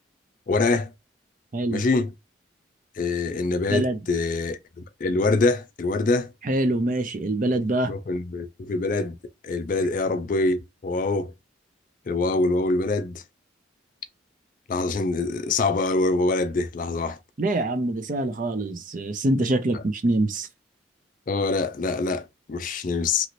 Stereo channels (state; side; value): normal; both; correlation 0.52